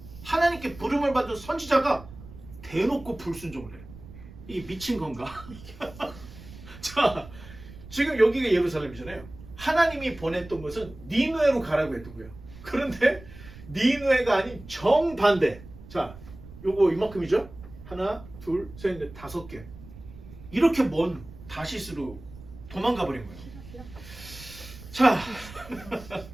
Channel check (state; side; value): noise; right; rumble, 17 dB below the sound